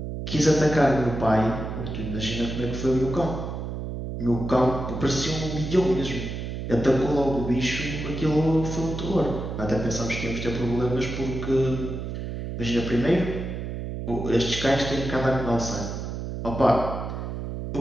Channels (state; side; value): noise; right; hum, 5 dB below the sound